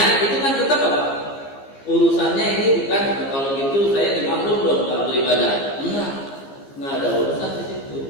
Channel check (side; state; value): right; late; 15 ms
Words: itu kan tetap apa? Urusannya ini bukan kalau gitu saya dimaklum dong nggak beribadah. Nggak ada urusan di situ.